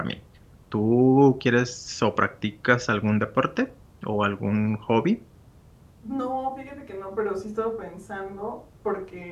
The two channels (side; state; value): both; identical; correlation 1.00